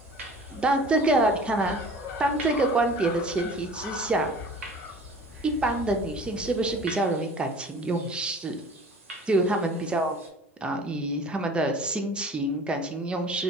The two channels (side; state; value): both; normal; correlation 0.44